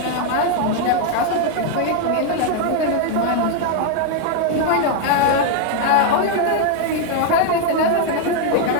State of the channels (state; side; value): different; both; correlation 0.00